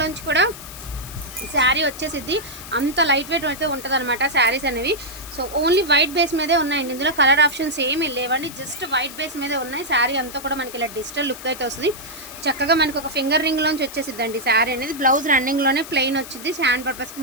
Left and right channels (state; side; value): noise; left; hiss, 14 dB below the sound